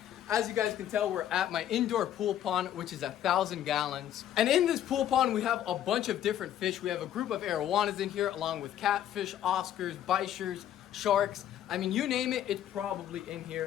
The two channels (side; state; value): right; quieter; 11.1 dB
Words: As you guys can tell, we're at my indoor pool pond, which is 1,000 gallons. And in this pool pond, we have a bunch of different fish. We have a group of arowanas in here, along with catfish, oscars, bichers, sharks. I mean, you name it, it's probably in